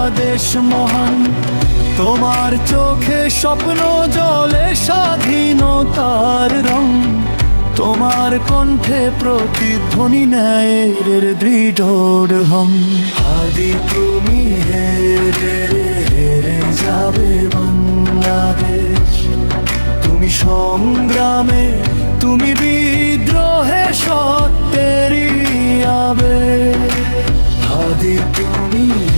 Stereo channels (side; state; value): both; inverted; correlation -1.00